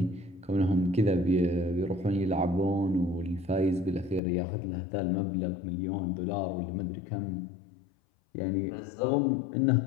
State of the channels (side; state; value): right; drops out; at 4.2 s